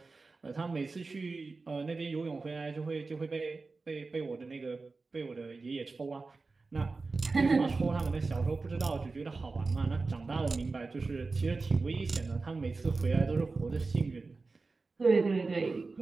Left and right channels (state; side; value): quieter; left; 3.9 dB